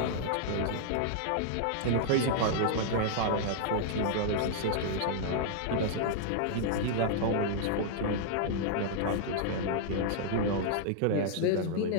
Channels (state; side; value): different; both; correlation -0.01